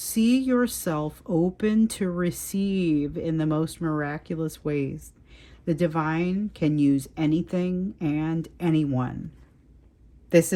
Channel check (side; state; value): both; identical; correlation 1.00